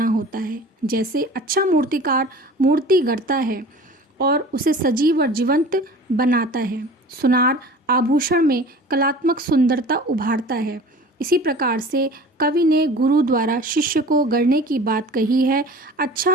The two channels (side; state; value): both; normal; correlation 0.41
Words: होता है। जैसे अच्छा मूर्तिकार मूर्ति गढ़ता है और उसे सजीव और जीवंत बनाता है, सुनार आभूषण में कलात्मक सुंदरता उभारता है, इसी प्रकार से कवि ने गुरु द्वारा शिष्य को गढ़ने की बात कही है।